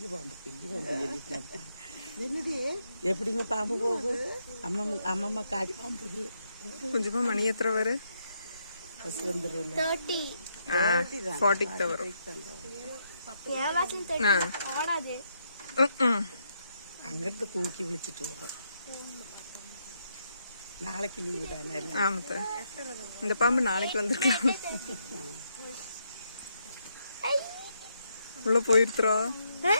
பாம்பு சொல்லிட்டு என்னது எப்படிங்க பாம்பு போகும் அம்மம்மா காடி பாம்பு கொஞ்சமா மணி எத்தனை வரும் 40 வரும் அங்கிருந்து தூக்கி விழிச்சிட்டு வரும் நாளைக்கு லீவு தானே ஆமாத்த இந்த பாம்பு நாளைக்கு வந்திருக்கலாம் உள்ள போயிருத்துறோம்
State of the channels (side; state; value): both; inverted; correlation -0.78